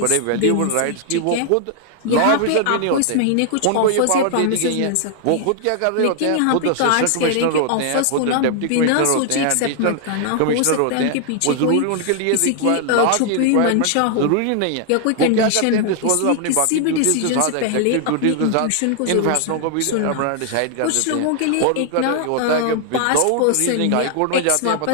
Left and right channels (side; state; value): both; different; correlation 0.00